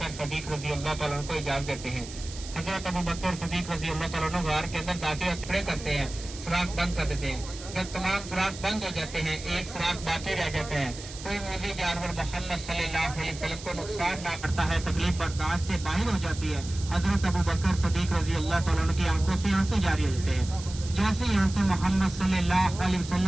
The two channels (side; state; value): right; noise; hiss, 13 dB below the sound